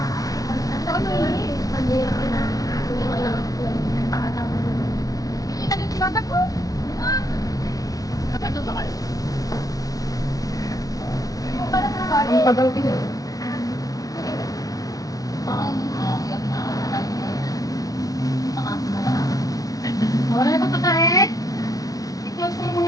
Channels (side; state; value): right; late; 0.17 ms